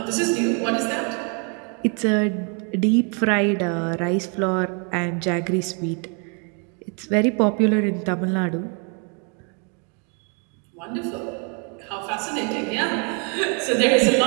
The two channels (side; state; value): left; quieter; 37.3 dB